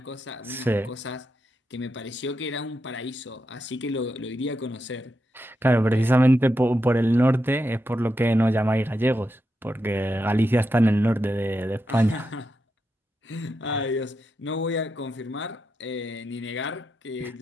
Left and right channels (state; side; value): normal; both; correlation 0.86